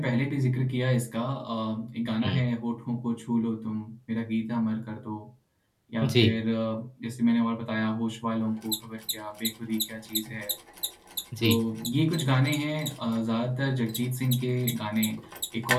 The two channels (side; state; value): both; identical; correlation 1.00